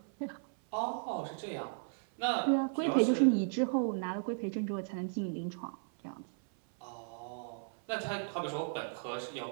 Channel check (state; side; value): silent; left; 54 dB below the other